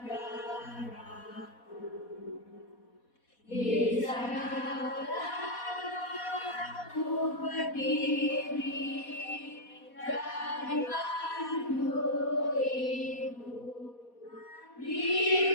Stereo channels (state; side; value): late; right; 4.1 ms